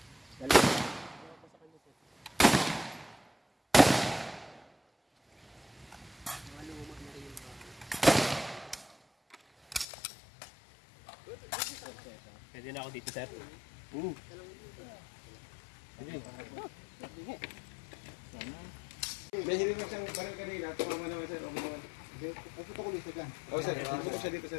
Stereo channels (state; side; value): drops out; right; at 9.9 s